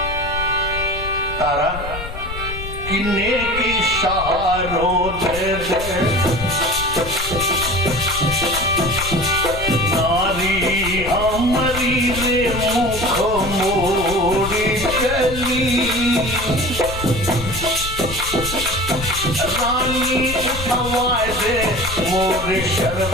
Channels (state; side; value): noise; left; rumble, 9 dB below the sound